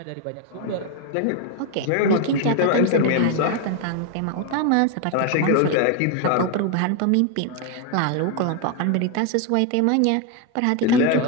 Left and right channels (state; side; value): different; both; correlation 0.01